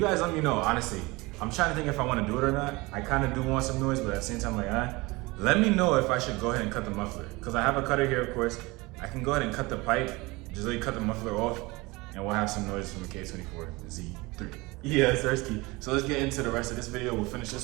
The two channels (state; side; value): quieter; left; 23.2 dB